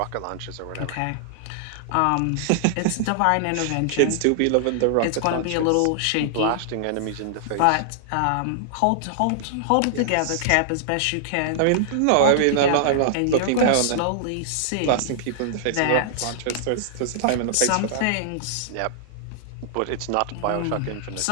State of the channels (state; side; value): different; both; correlation -0.01